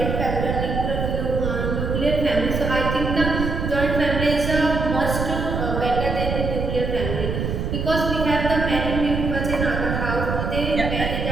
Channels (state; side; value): noise; right; rumble, 2 dB below the sound